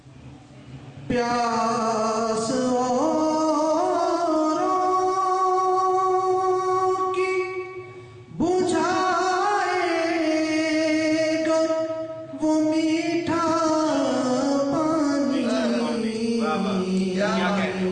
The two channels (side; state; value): both; identical; correlation 1.00